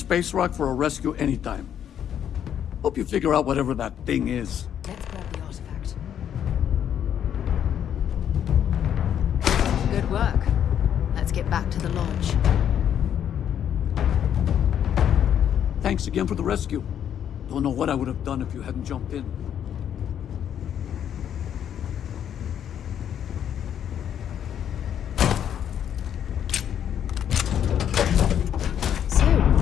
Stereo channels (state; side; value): quieter; right; 9.5 dB